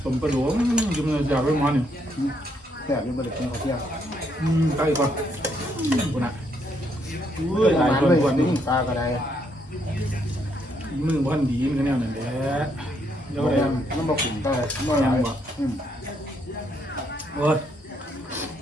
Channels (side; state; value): both; normal; correlation 0.73